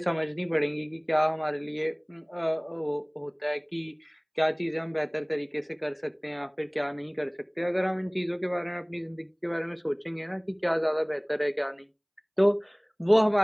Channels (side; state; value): both; identical; correlation 1.00